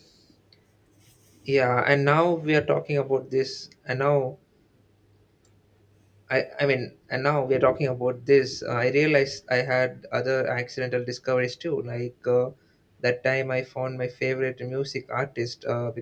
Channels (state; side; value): identical; both; correlation 1.00